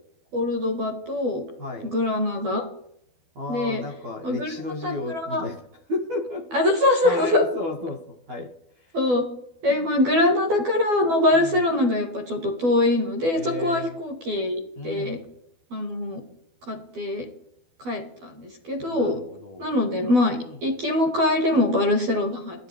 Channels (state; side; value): late; left; 12 ms